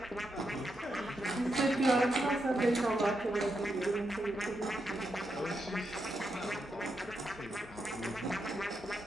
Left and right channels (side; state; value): both; normal; correlation 0.83